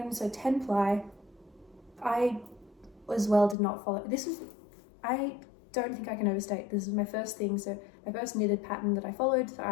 so 10 ply. I as well did not follow. I don't think I can overstate. This is my first thing, so my first knitted pattern that I followed. So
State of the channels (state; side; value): drops out; right; at 3.6 s